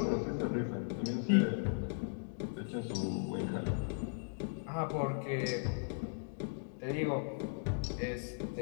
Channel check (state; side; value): silent; right; digital silence